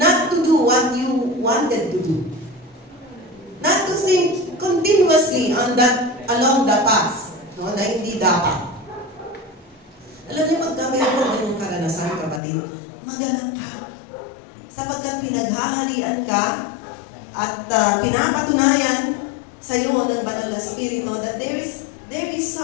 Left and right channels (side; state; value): right; drops out; at 12.4 s